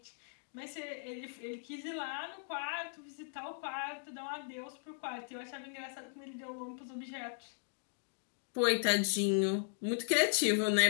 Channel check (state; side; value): silent; right; digital silence